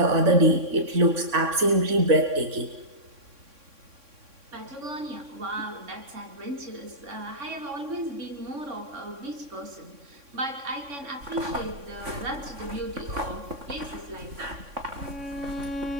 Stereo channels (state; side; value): late; left; 3.6 ms